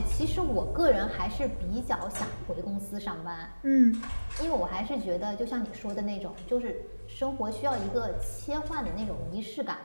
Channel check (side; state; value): both; inverted; correlation -1.00